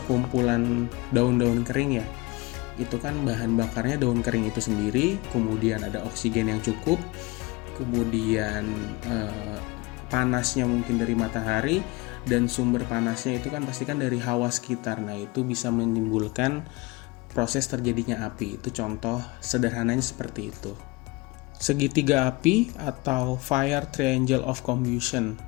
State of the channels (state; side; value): quieter; right; 23.3 dB